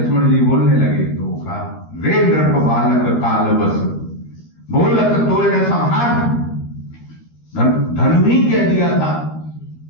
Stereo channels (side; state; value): right; late; 13 ms